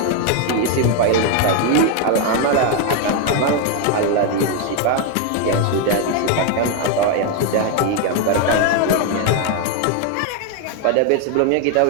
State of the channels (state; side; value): different; both; correlation 0.01